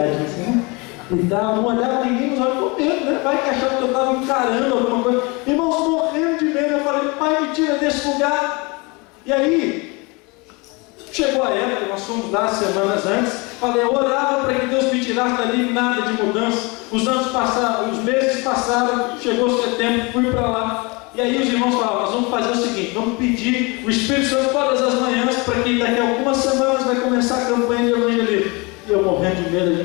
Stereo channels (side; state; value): right; quieter; 27.6 dB